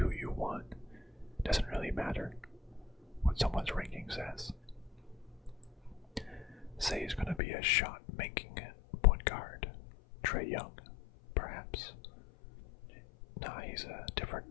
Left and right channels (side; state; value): right; drops out; at 7.4 s